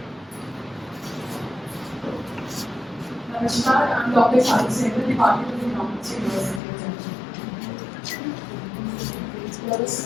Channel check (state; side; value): drops out; right; at 6.6 s